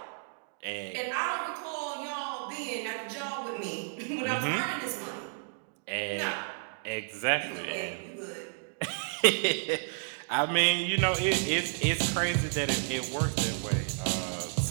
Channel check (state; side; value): silent; left; digital silence